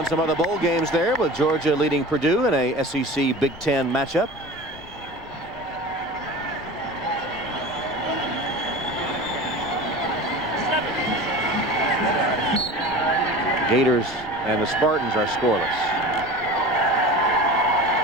some other bowl games there, with Georgia leading Purdue in a SEC Big Ten matchup. Gators and the Spartans are scoreless.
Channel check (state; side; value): noise; left; rumble, 21 dB below the sound